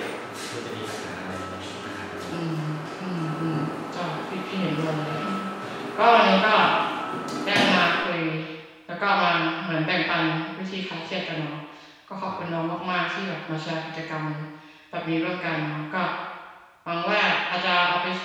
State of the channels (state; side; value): identical; both; correlation 1.00